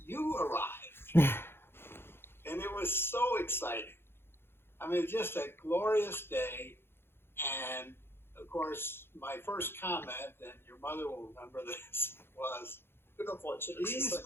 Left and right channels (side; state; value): right; late; 0.11 ms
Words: you arrived. And it was so exciting. I mean, just a glorious day. And, of course, my first comment, and your mother will remember this, was, Beautiful. she's